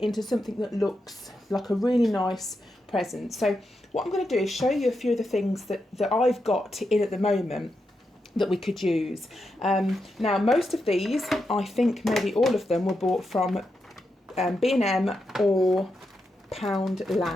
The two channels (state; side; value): normal; both; correlation 0.86